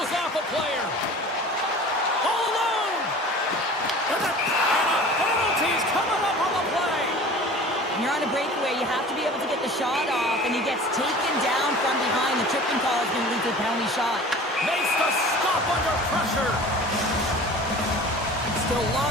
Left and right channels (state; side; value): normal; both; correlation 0.41